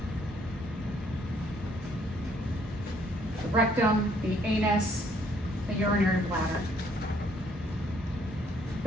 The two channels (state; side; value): normal; both; correlation 0.65